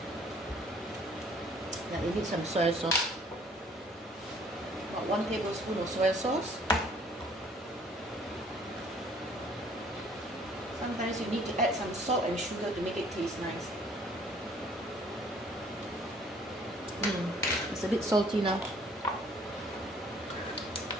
Now you need some soy sauce. About 1 tablespoon of soy sauce. Sometimes you need to add some salt and sugar to make it taste nice. It's a bit salty now.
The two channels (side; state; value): both; normal; correlation 0.57